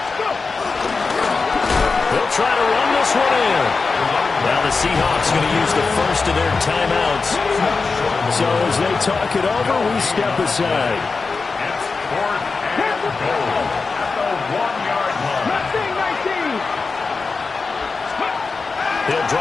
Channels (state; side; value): quieter; right; 4.4 dB